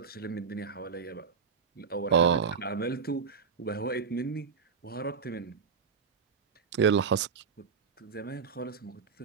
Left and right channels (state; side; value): quieter; left; 5.8 dB